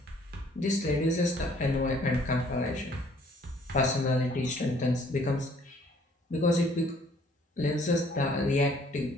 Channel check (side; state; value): both; normal; correlation 0.60